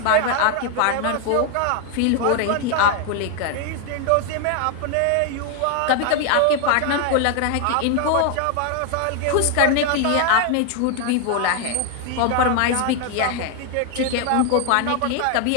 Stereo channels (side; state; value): both; different; correlation 0.00